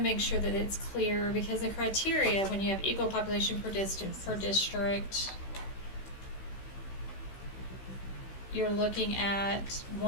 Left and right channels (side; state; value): right; late; 16 ms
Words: make sure that it's clear, because the criteria, when you have equal population per district, you're looking at